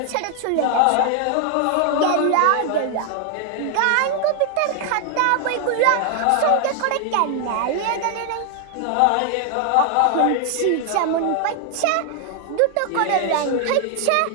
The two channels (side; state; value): both; different; correlation 0.00